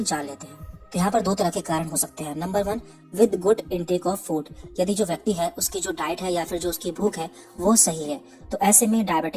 जान लेते हैं। तो यहाँ पर 2 तरह के कारण हो सकते हैं। Number 1, with good intake of food. यदि जो व्यक्ति है उसकी जो डाइट है या फिर जो उसकी भूख है वो सही है, तो ऐसे में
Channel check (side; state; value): both; identical; correlation 1.00